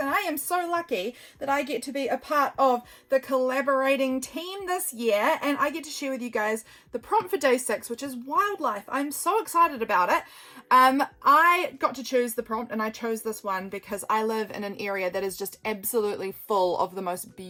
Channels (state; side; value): identical; both; correlation 1.00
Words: I am so lucky that I get to be a part of the collaborating team this year, and I get to share with you guys the prompt for day 6, which is wildlife. I'm so excited about it. I got to choose the prompt, and I chose this one because I live in an area that is just absolutely full of the most